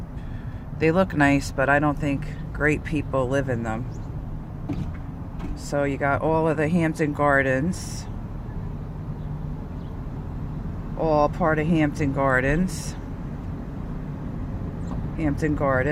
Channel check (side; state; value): both; identical; correlation 1.00